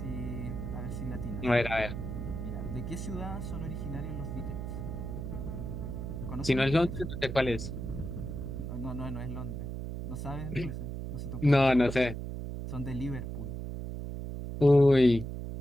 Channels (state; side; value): noise; right; hum, 6 dB below the sound